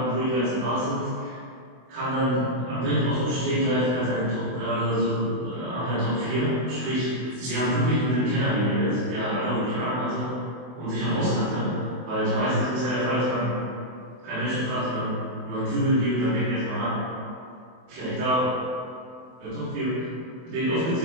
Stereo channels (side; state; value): left; late; 24 ms